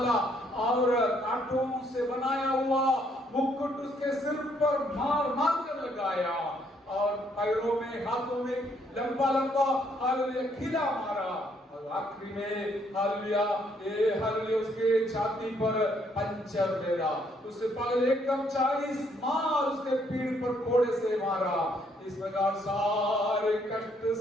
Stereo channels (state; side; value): normal; both; correlation 0.69